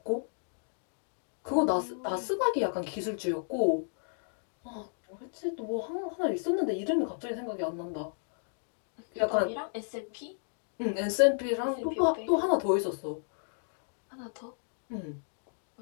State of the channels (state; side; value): silent; right; digital silence